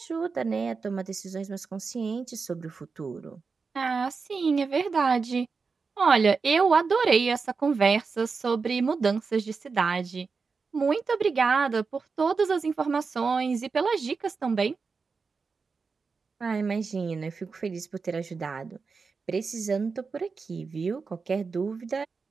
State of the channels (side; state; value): left; quieter; 4.8 dB